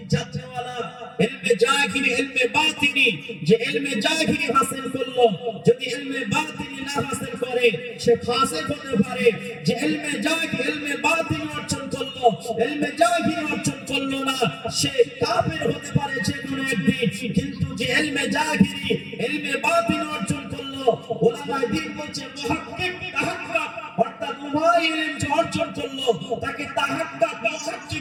জাননেওয়ালা, ইলমে জাহিরি ইলমে বাতিনি, যে ইলমে জাহিরি হাসিল করলো যদি ইলমে বাতিনি না হাসিল করে সে ফাসিক হতে পারে। যে ইলমে জাহিরি ইলমে বাতিনি অর্জন করলো, ইলমে জাহিরি অর্জন করলো না, সে কাফের হতে পারে যে কোনো একদিন। কিন্তু যে ইলমে জাহিরি ইলমে বাতিনি অর্জন করলো, উলামায়ে দ্বীন বলছে মুহাক্কিক তাহাক্কুক, অর্থাৎ উভয় ইলম যে অর্জন করলো তাকে তাহাক্কুক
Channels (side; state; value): both; identical; correlation 1.00